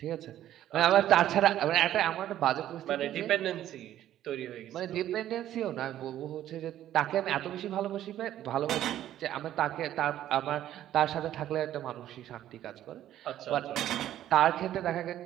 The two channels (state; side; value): quieter; left; 12.3 dB